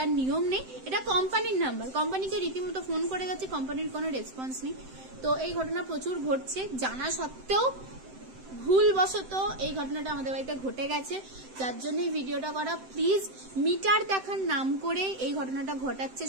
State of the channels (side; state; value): left; late; 7.8 ms